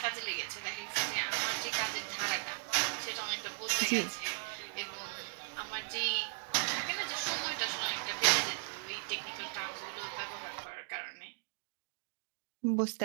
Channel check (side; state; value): left; silent; digital silence